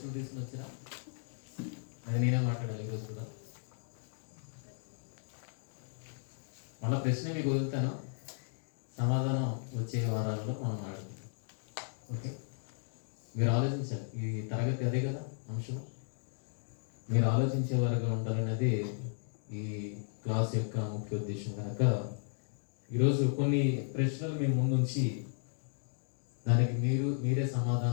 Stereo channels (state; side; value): silent; right; digital silence